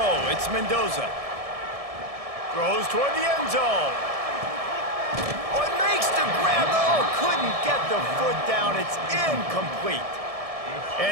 it's Mendoza. Throws toward the end zone. Oh, it makes the grab. Oh, couldn't get the foot down. It's incomplete.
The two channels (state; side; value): late; left; 1.7 ms